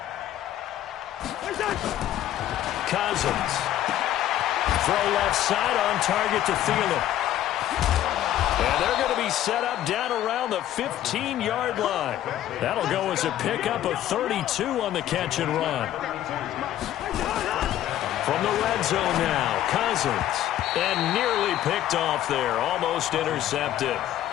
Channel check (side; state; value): right; quieter; 12.5 dB